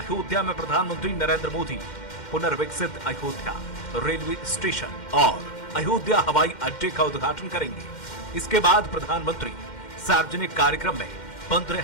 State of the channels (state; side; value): late; right; 2.1 ms